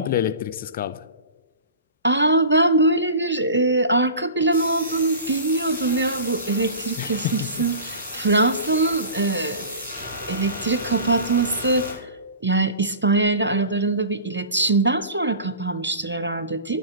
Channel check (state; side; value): inverted; both; correlation -0.36